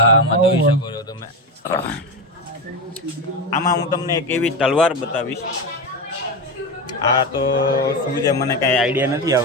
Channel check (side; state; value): both; normal; correlation 0.17